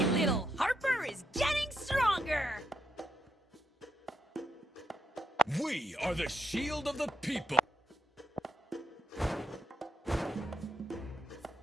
little, Harper is getting stronger! We are the shield of the people.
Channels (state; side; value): normal; both; correlation 0.79